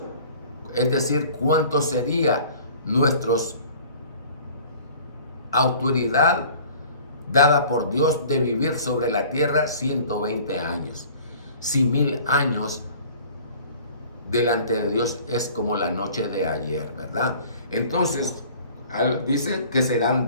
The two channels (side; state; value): both; inverted; correlation -0.48